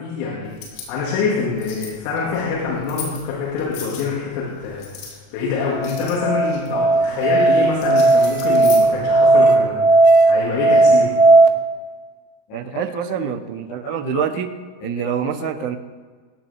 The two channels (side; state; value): right; late; 29 ms